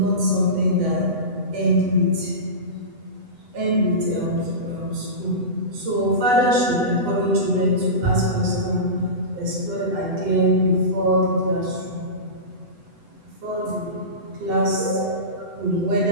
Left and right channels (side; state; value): left; late; 8.0 ms